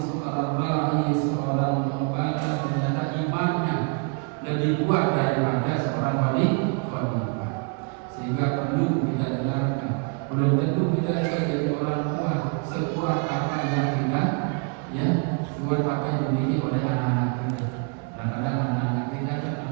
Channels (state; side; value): quieter; left; 36.5 dB